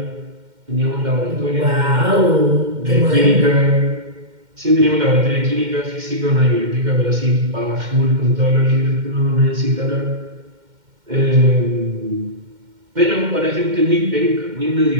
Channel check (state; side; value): late; left; 2.1 ms